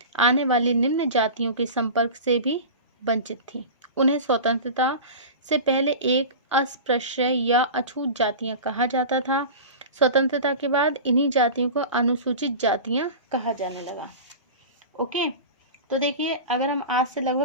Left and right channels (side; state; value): both; inverted; correlation -0.31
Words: आने वाली निम्न जातियों के संपर्क से भी वंचित थी, उन्हें स्वतंत्रता से पहले एक अस्पृश्य या अछूत जातियां कहा जाता था. स्वतंत्रता के बाद इन्हीं जातियों को अनुसूचित जातियां कहा जाने लगा. ओके, तो देखिए अगर हम आज से